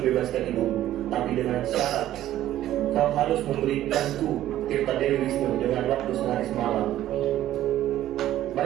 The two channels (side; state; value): left; quieter; 13.2 dB